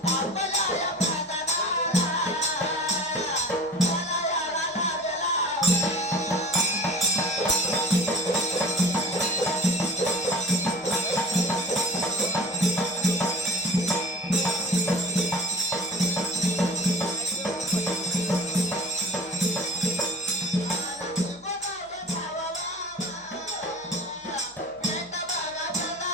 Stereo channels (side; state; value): right; noise; hum, 29 dB below the sound